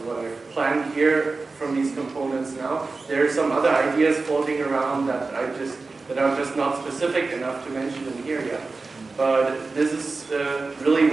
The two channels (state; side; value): quieter; left; 3.9 dB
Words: I've planned here from these components now. There are some other ideas floating around that are just not specific enough to mention in here yet. But this is really